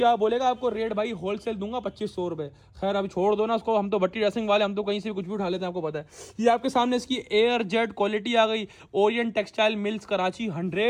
बाद बोलेगा आपको रेट भाई होलसेल दूंगा 2500 रुपये। खैर अभी छोड़ दो ना उसको, हम तो भट्टी ड्रेसिंग वाले, हम तो कहीं से भी कुछ भी उठा लेते हैं, आपको पता है। ये आपके सामने इसकी एयर जेट क्वालिटी आ गई, Orient textile mills Karachi,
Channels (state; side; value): identical; both; correlation 1.00